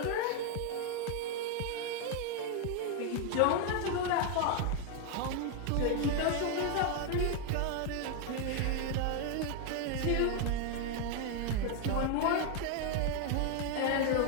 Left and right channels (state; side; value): different; both; correlation 0.01